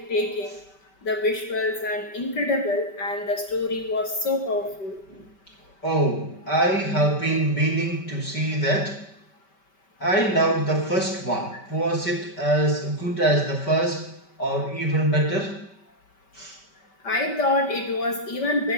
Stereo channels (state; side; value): late; right; 5.2 ms